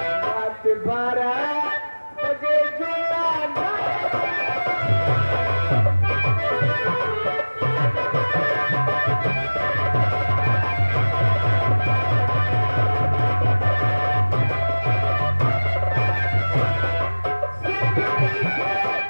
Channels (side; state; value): both; inverted; correlation -1.00